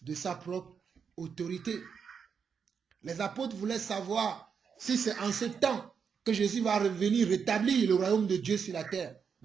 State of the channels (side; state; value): left; quieter; 6.5 dB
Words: de sa propre autorité. Les apôtres voulaient savoir si c'est en ce temps que Jésus va revenir rétablir le royaume de Dieu sur la terre.